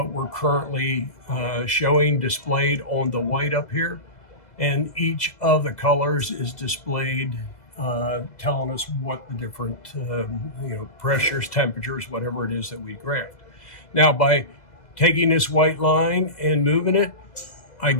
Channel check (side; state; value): right; late; 2.0 ms